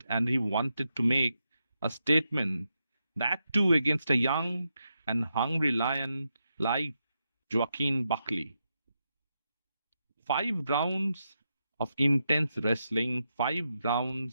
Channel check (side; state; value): both; inverted; correlation -0.85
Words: and he wanted to make a statement, that too against a young and hungry lion like Joaquin Buckley. 5 rounds of intense wrestling, 5